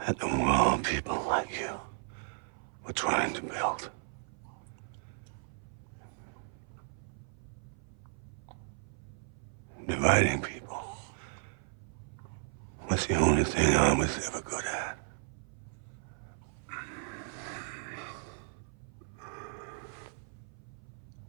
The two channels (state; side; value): silent; left; 54 dB below the other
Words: at the world people like you were trying to build. Dividing people was the only thing I was ever good at.